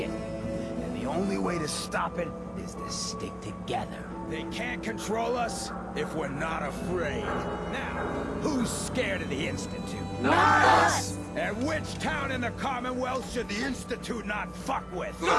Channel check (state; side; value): identical; both; correlation 1.00